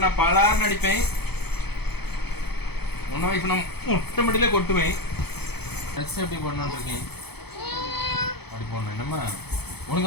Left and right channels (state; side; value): late; right; 0.97 ms